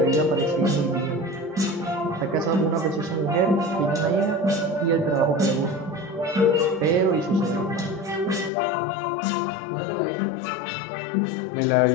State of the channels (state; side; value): drops out; right; at 8.5 s